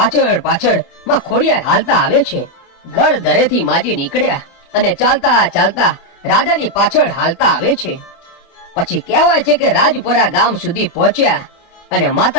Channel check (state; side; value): late; right; 29 ms